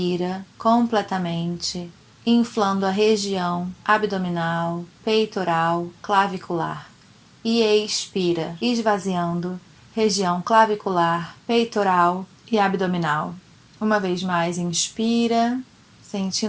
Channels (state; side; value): identical; both; correlation 1.00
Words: completamente, inflando a região abdominal, peitoral, clavicular. E expira, esvaziando região clavicular, peitoral e abdominal. Uma vez mais, inspira,